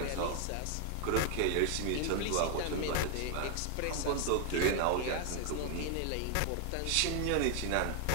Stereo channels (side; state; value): both; different; correlation 0.00